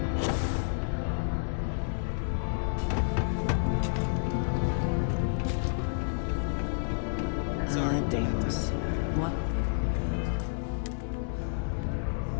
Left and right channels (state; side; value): silent; right; digital silence